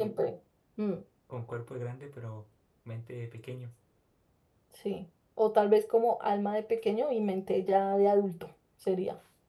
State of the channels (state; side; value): identical; both; correlation 1.00